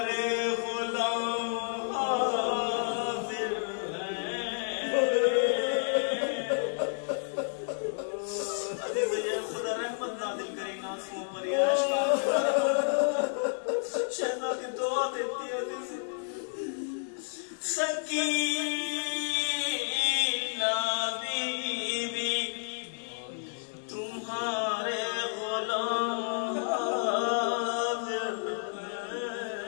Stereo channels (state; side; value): silent; right; digital silence